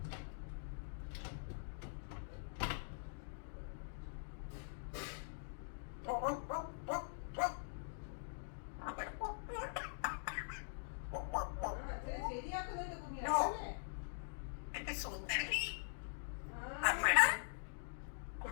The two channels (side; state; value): right; silent; digital silence